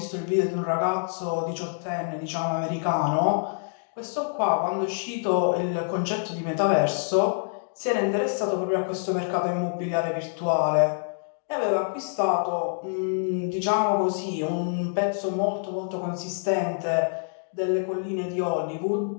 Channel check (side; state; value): right; silent; digital silence